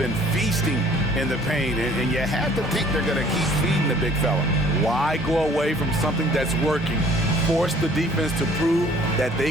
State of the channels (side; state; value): both; normal; correlation 0.55